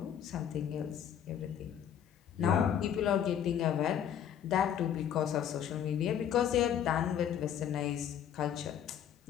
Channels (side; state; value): right; quieter; 9.3 dB